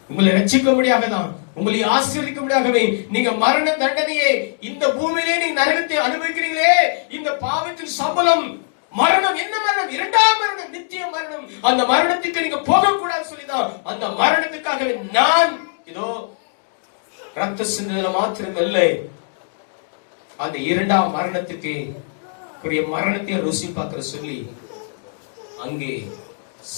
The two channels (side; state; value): right; silent; digital silence